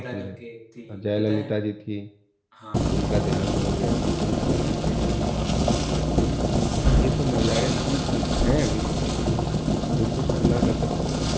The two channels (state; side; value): identical; both; correlation 1.00